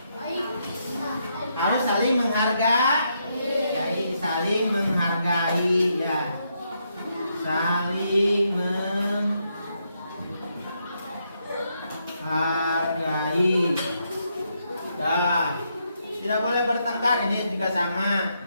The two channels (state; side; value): inverted; both; correlation -0.79